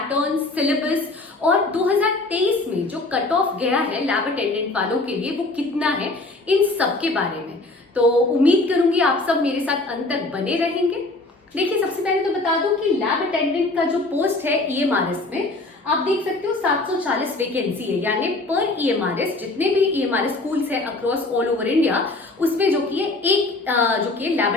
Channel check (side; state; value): right; quieter; 3.0 dB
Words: सिलेबस और 2023 में जो कट ऑफ गया है लैब अटेंडेंट वालों के लिए वो कितना है, इन सब के बारे में। तो उम्मीद करूंगी आप सब मेरे साथ अंत तक बने रहेंगे। देखिए सबसे पहले तो बता दूं कि लैब अटेंडेंट का जो पोस्ट है EMRS में, आप देख सकते हो 740 वैकेंसी है, यानी पर EMRS जितने भी EMRS स्कूल्स है अक्रॉस ऑल ओवर इंडिया, उसमें जो कि एक जो कि लैब